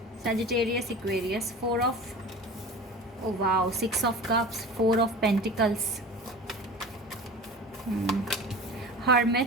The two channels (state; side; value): normal; both; correlation 0.35